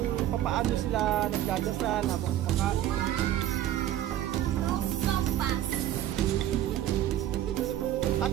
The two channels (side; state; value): left; quieter; 12.5 dB